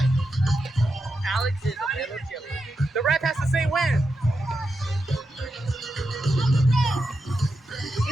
Alex is a little chilly. The ref has to say when.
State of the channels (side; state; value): both; normal; correlation 0.87